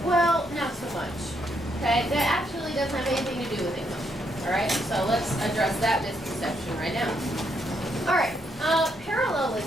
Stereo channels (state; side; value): normal; both; correlation 0.76